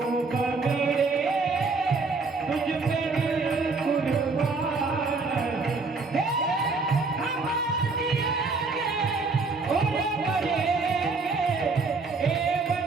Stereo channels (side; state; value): left; quieter; 4.1 dB